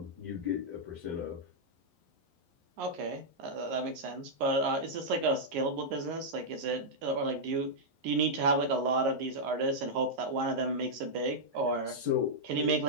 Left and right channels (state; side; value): late; left; 11 ms